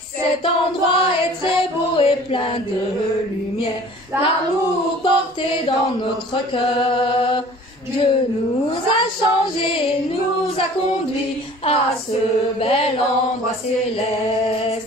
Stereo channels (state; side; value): normal; both; correlation 0.48